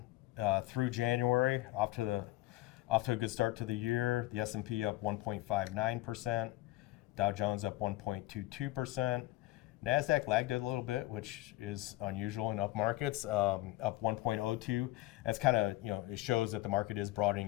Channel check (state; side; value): quieter; right; 17.9 dB